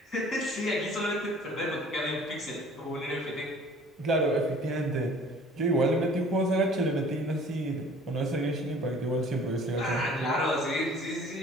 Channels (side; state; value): both; normal; correlation 0.50